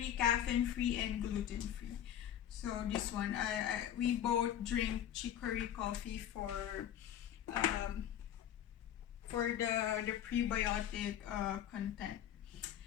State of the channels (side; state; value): right; quieter; 10.5 dB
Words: caffeine-free, and gluten-free. So this one, we both drink chicory coffee for the prebiotic content.